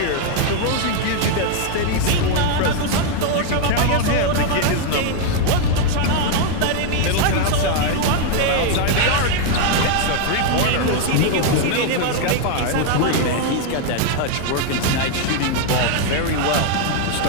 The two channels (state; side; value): different; both; correlation 0.00